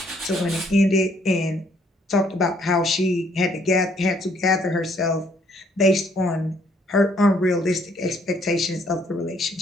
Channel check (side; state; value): both; normal; correlation 0.66